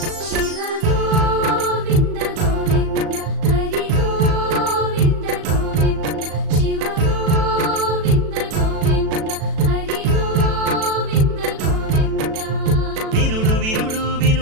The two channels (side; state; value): left; late; 37 ms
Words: శివ గోవింద గోవింద హరి గోవింద గోవింద శివ గోవింద గోవింద హరి గోవింద గోవింద వినుడు వినుడు